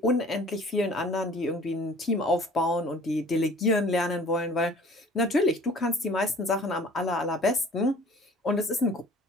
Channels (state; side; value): normal; both; correlation 0.49